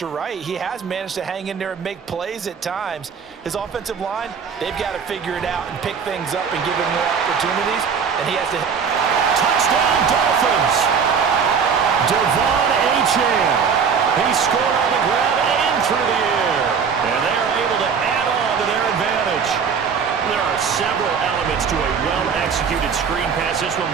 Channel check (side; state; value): left; quieter; 6.3 dB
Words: you're right. He has managed to hang in there and make plays at times. His offensive line, they've got to figure it out and pick things up and give him more opportunities, and he has to... Touchdown, Dolphins! Devon Achane. He scored on the ground and through the air. And they are able to add on to their advantage. There are several elements to a well-executed screen pass. This one